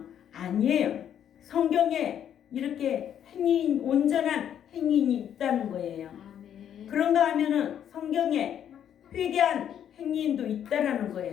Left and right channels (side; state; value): right; quieter; 9.6 dB